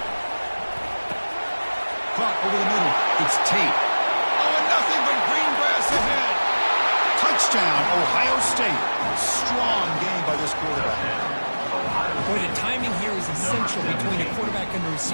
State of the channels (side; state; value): both; inverted; correlation -1.00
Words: Caught over the middle. It's Tate. Oh, and nothing but green grass ahead. Touchdown, Ohio State. Strong game by this quarterback. Boy, the timing here is essential between the quarterback and the